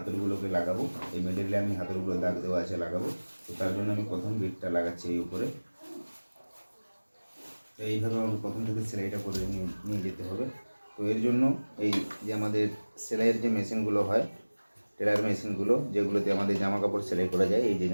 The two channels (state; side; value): inverted; both; correlation -1.00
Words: লাগাবো। এই মিডলে আমি হাতলগুলো দাগ দেওয়া আছে লাগাবো। তো তার জন্য আমি প্রথম বিটটা লাগাচ্ছি এই উপরে। তো এইভাবে আমাকে প্রথম থেকে সেলাইটা করে নিয়ে যেতে হবে। তো এর জন্য এই যে আমাদের সেলাইয়ের যে মেশিনগুলো হয়, টেলার মেশিনগুলো, যেগুলোতে আমাদের জামা কাপড় সেলাই করা যায়, এই যে